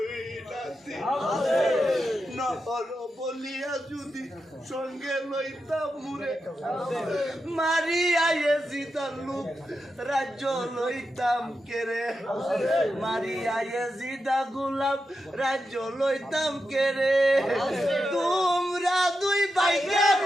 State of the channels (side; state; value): both; normal; correlation 0.88